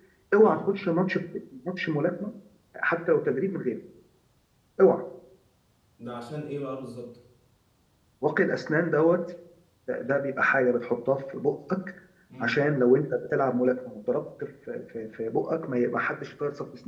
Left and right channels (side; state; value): both; identical; correlation 1.00